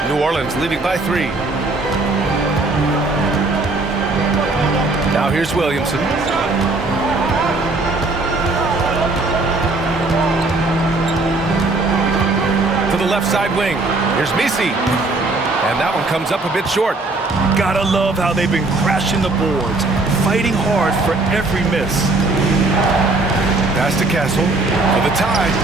New Orleans leading by 3. Now here's Williamson. To the left side wing. Here's Misi. And that one comes up a bit short. Gotta love how they've been crashing the boards, fighting hard for every miss. Pass to Castle for the tie.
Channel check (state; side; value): quieter; left; 3.2 dB